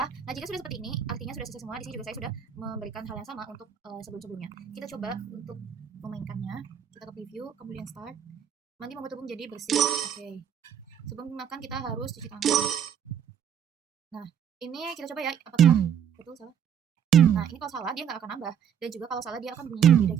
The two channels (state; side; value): quieter; left; 8.5 dB